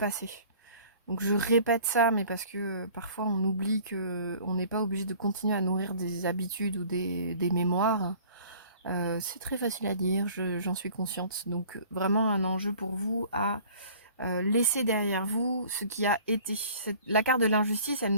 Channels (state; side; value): inverted; both; correlation -0.50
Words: Donc je répète ça, mais parce que parfois on oublie que on n'est pas obligé de continuer à nourrir des habitudes ou des mémoires. C'est très facile à dire, j'en suis consciente. Donc vraiment un enjeu pour vous à laisser derrière vous ce qui a été. La carte de l'injustice, elle